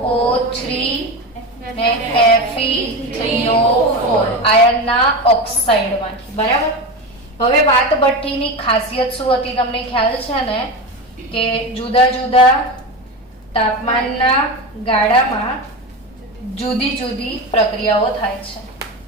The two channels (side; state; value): both; normal; correlation 0.22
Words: ને Fe3O4 આયનના ઓક્સાઇડમાંથી. બરાબર. હવે વાત ભઠ્ઠીની ખાસિયત શું હતી તમને ખ્યાલ છે ને? કે જુદા જુદા તાપમાનના ગાળામાં જુદી જુદી પ્રક્રિયાઓ થાય છે.